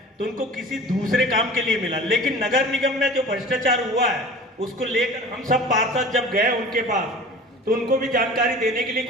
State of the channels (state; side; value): normal; both; correlation 0.40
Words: तो उनको किसी दूसरे काम के लिए मिला, लेकिन नगर निगम में जो भ्रष्टाचार हुआ है उसको लेकर हम सब पार्षद जब गए उनके पास, तो उनको भी जानकारी देने के लिए